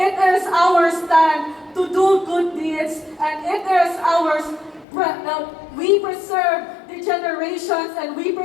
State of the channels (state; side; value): drops out; right; at 4.9 s